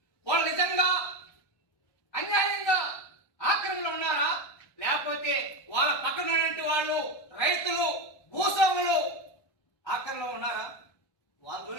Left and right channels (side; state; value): right; late; 1.2 ms